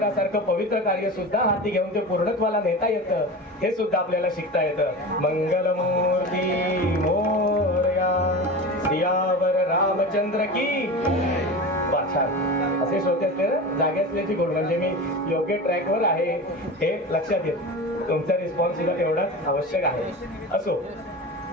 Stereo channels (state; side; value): normal; both; correlation 0.29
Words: पवित्र कार्य सुद्धा हाती घेऊन ते पूर्णत्वाला नेता येतं. हे सुद्धा आपल्याला शिकता येतं. मंगलमूर्ती मोरया, सियावर रामचंद्र की. छान. असे श्रोते असले जागे असल्याची गोड, म्हणजे मी योग्य ट्रॅकवर आहे हे लक्षात येत. तुमचा रिस्पॉन्स सुद्धा तेवढाच आवश्यक आहे. असो,